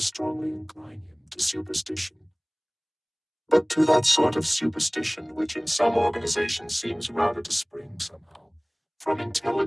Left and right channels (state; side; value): identical; both; correlation 1.00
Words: incline him to superstition. But to that sort of superstition which in some organizations seems rather to spring somehow from